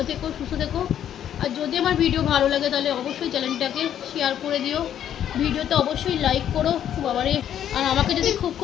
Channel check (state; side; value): quieter; right; 10.2 dB